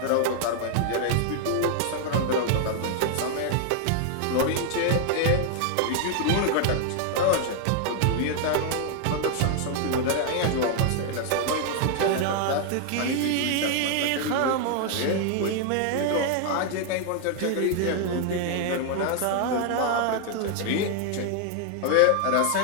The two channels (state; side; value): different; both; correlation 0.00